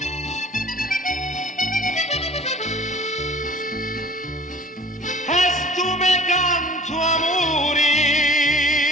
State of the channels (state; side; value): normal; both; correlation 0.47